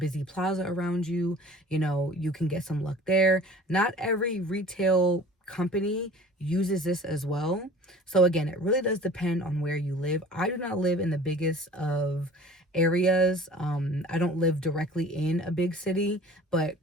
plaza around you, you know, you can get some luck there. Not every retail company uses this as well. So again, it really does depend on where you live. I do not live in the biggest of areas. I don't live directly in a big city,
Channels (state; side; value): normal; both; correlation 0.45